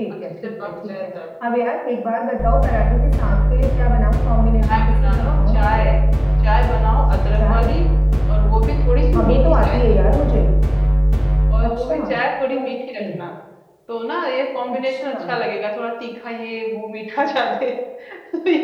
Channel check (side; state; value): both; identical; correlation 1.00